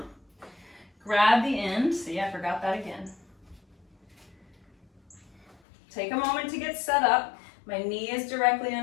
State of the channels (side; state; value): right; drops out; at 5.6 s